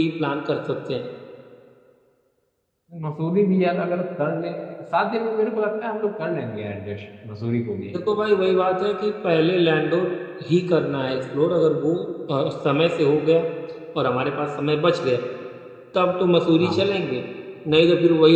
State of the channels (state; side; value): identical; both; correlation 1.00